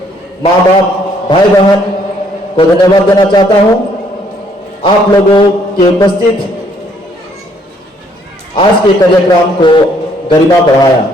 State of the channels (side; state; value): both; normal; correlation 0.66